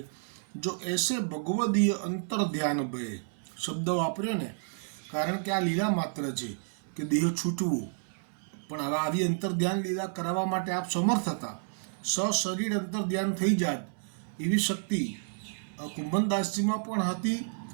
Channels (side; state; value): left; silent; 57 dB below the other